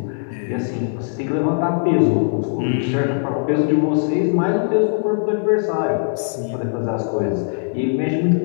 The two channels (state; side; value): silent; right; digital silence